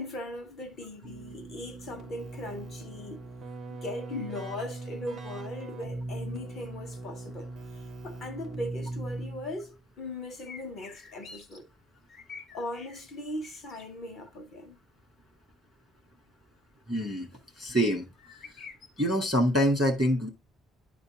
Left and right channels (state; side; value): normal; both; correlation 0.59